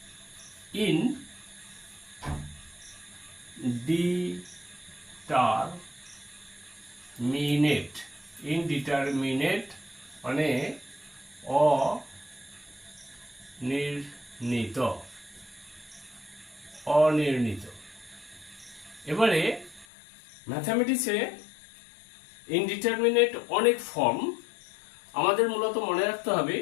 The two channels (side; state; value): right; drops out; at 19.9 s